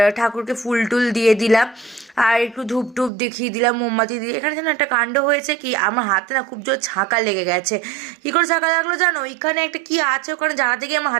ঠাকুরকে ফুল টুল দিয়ে দিলাম, আর একটু ধূপ টুপ দেখিয়ে দিলাম, মোমবাতি দিয়ে। এখানে যেন একটা কাণ্ড হয়েছে কি, আমার হাতে না খুব জোর ছাঁকা লেগে গেছে। কী করে ছাঁকা লাগলো জানো? এখানে একটা কি আছে, ওখানে জায়গাতে গিয়ে আমার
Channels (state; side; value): drops out; left; at 3.1 s